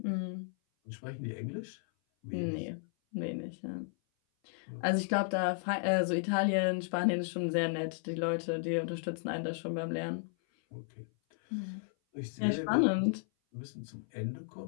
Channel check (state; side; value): silent; right; 55 dB below the other